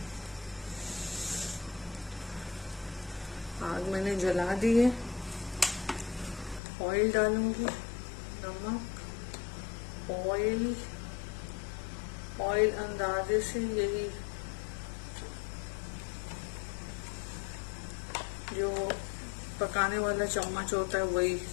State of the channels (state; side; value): drops out; right; at 6.6 s